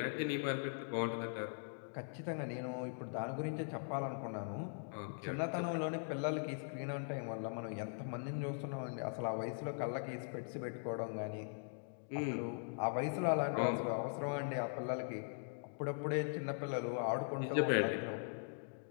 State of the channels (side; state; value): right; silent; digital silence